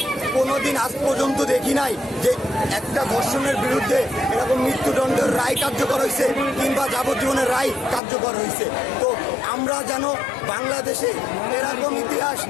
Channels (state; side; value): drops out; right; at 8.0 s